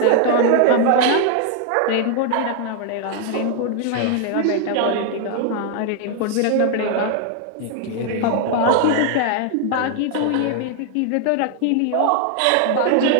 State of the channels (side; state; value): both; different; correlation 0.00